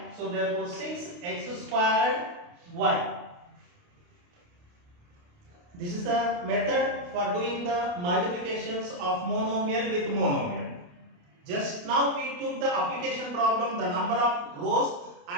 So therefore 6x squared y. This is the method for doing the multiplications of monomial with monomial. Just now we took the application problem, the number of rows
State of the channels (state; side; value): late; left; 29 ms